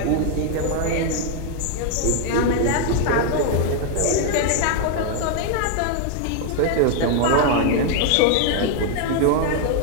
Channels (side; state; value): both; different; correlation 0.01